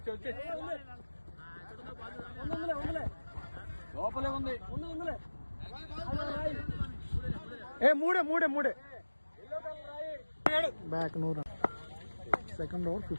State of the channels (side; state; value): both; inverted; correlation -1.00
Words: లోపలే ఉంది. మూడే back. No run. Second over